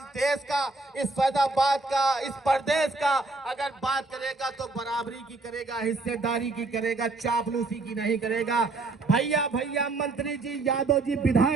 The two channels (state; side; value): quieter; left; 3.4 dB